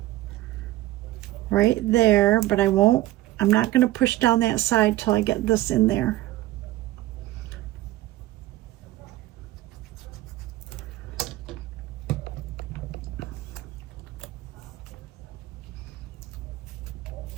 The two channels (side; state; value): left; quieter; 16.2 dB